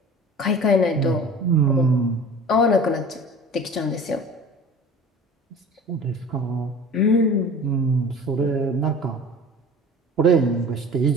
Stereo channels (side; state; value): both; normal; correlation 0.41